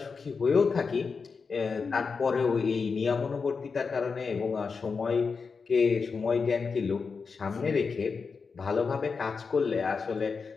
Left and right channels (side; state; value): right; quieter; 5.1 dB